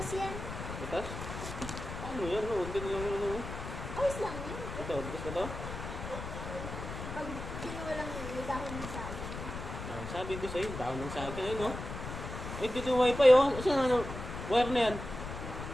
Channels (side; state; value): left; noise; rumble, 8 dB below the sound